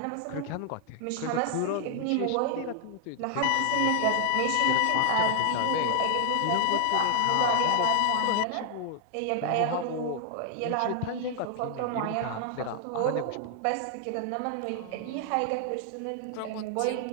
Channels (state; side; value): different; both; correlation 0.00